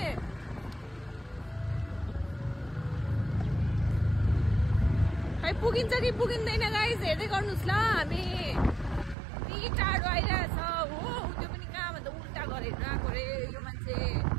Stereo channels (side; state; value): left; drops out; at 9.2 s